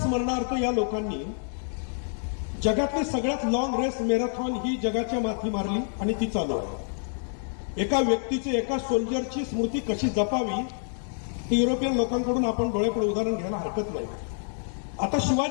या लोकांनी जगातली सगळ्यात लॉंग रेस मॅरेथॉन ही जगाच्या माथी मारली आणि ती चालू आहे. एका व्यक्तीची, एका सोल्जरची स्मृती कशी जपावी ती युरोपियन लोकांकडून आपण डोळेपुढे उदाहरण घ्यायला हरकत नाही. आता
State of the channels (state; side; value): silent; right; 60 dB below the other